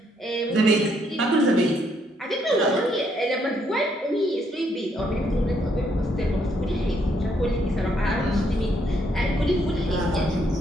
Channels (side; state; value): both; normal; correlation 0.72